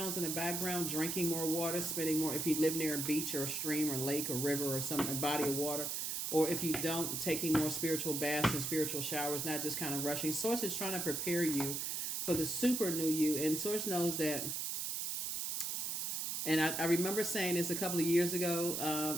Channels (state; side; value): noise; right; hiss, 2 dB below the sound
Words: in the background, drinking more water, spending more, if you live near a beach or a stream or lake or river or a body of water, or if you don't, taking more spiritual baths and spiritual showers, not just kind of rushing. Source is trying to prepare you for the super new you, and Source knows that. And I remember saying this a couple of years ago,